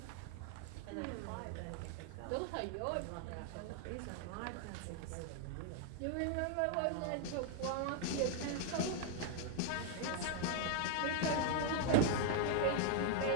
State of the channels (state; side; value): different; both; correlation 0.00